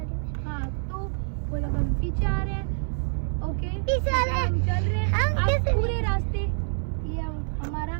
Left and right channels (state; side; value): silent; left; 60 dB below the other